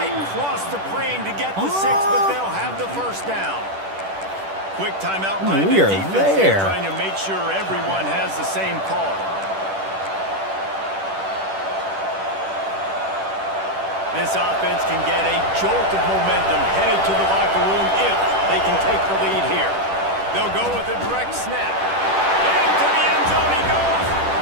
crossed the plane to get the 6, but they'll have the first down. Quick timeout by the We are defense there. trying to make sure everyone has the same call. This offense can get a jolt of momentum headed to the locker room if they can take the lead here. They'll go with a direct snap. Into the end zone he goes.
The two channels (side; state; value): left; late; 10 ms